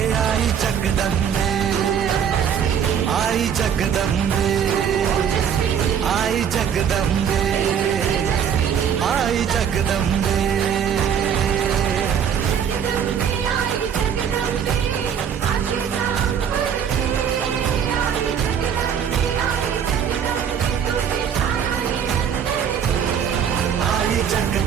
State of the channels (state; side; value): quieter; left; 8.1 dB